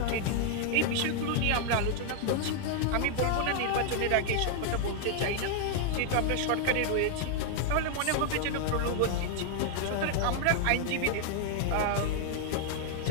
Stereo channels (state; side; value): different; both; correlation 0.00